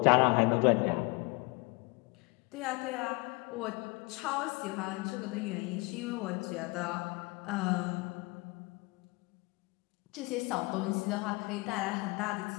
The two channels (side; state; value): right; quieter; 26.3 dB